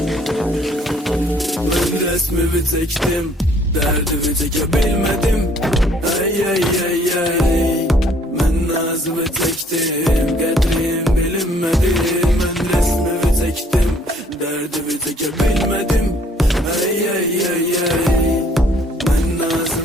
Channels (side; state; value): both; normal; correlation 0.61